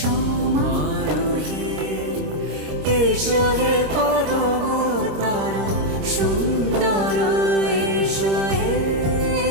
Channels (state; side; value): late; left; 26 ms